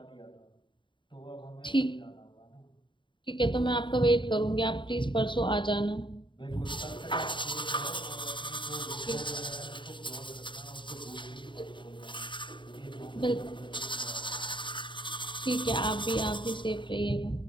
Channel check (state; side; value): late; right; 0.23 ms